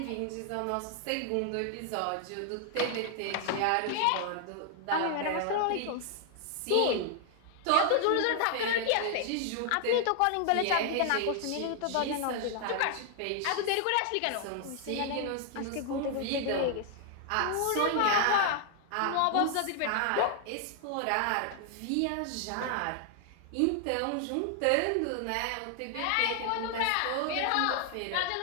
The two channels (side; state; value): both; different; correlation 0.00